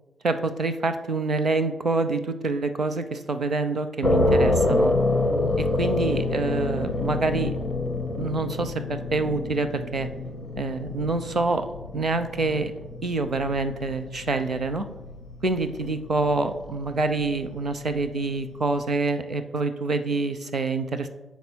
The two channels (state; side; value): normal; both; correlation 0.60